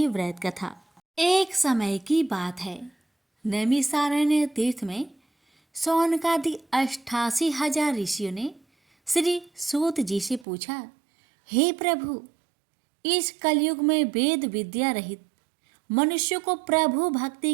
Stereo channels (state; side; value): drops out; left; at 10.5 s